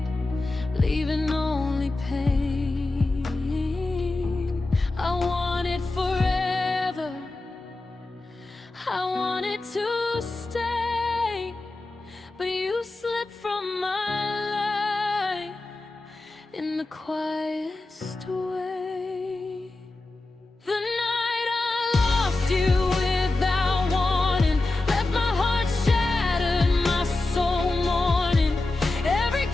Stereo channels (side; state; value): right; quieter; 3.1 dB